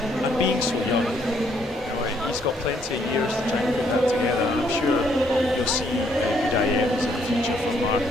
And being so young, he's got plenty of years to try and put that together. And I'm sure you'll see good IMs in the future from Mark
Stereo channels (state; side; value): normal; both; correlation 0.69